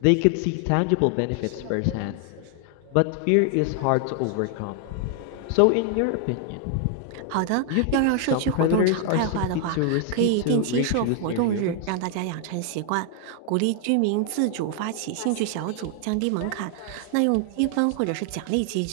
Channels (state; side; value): different; both; correlation 0.00